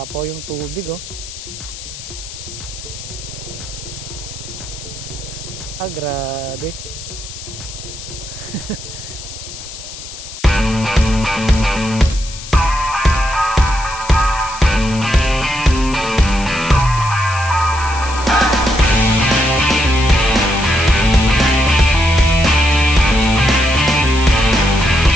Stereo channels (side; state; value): left; noise; hiss, 12 dB below the sound